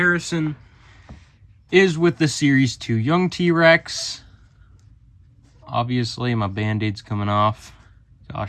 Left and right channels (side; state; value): both; identical; correlation 1.00